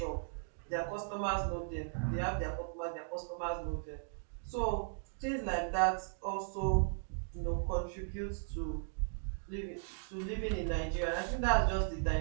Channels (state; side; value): silent; left; digital silence